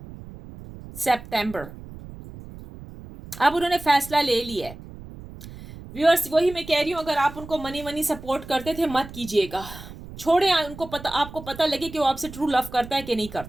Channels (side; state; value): right; noise; rumble, 15 dB below the sound